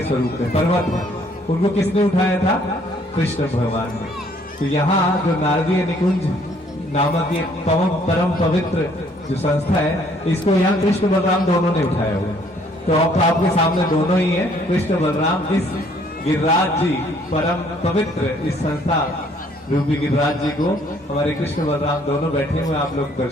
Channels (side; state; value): both; normal; correlation 0.63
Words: स्वरूप में पर्वत है। उनको किसने उठाया था? कृष्ण भगवान ने। तो यहाँ जो नारदीय निकुंज नामक ये परम पवित्र जो संस्था है, इसको यहाँ कृष्ण बलराम दोनों ने उठाया हुआ। तो अब आपके सामने दोनों ही है, कृष्ण बलराम। इस गिरिराज जी परम पवित्र इस संस्था रूपी गिरिराज जी को हमारे कृष्ण बलराम दोनों बैठे हुए आप लोग